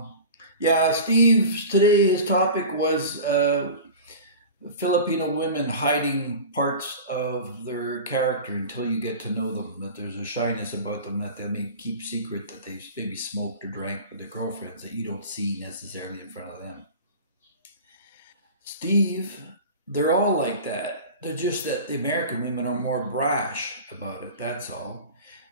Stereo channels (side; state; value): both; inverted; correlation -0.35